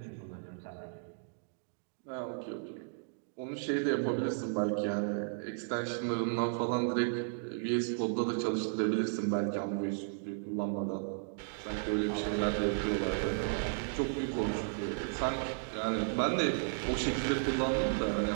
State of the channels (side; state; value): left; silent; digital silence